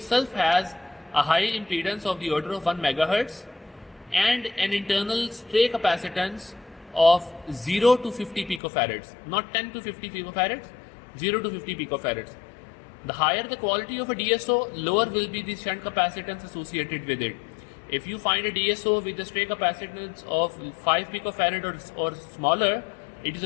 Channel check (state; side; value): drops out; right; at 8.6 s